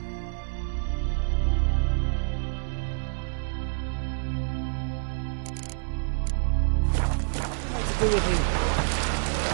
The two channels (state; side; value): silent; left; 60 dB below the other